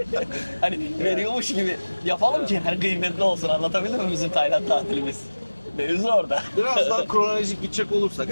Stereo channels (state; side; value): inverted; both; correlation -1.00